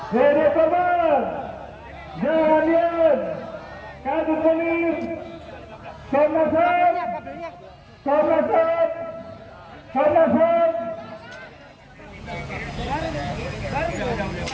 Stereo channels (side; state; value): both; identical; correlation 1.00